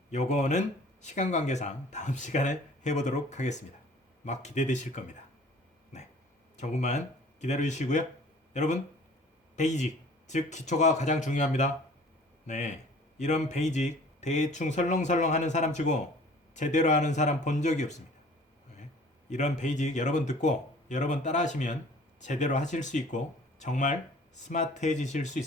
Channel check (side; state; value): both; normal; correlation 0.50